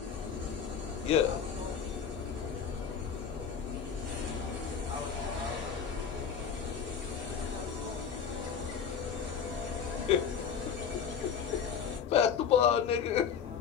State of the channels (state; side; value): quieter; right; 7.2 dB